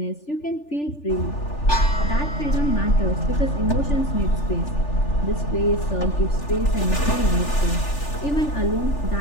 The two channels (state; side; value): late; right; 3.4 ms